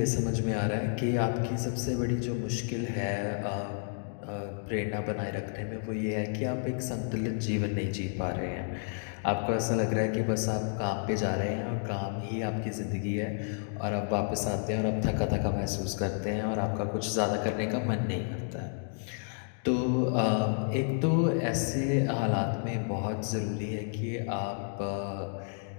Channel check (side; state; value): right; silent; 57 dB below the other